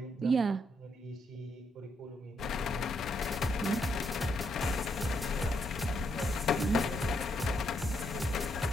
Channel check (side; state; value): both; normal; correlation 0.77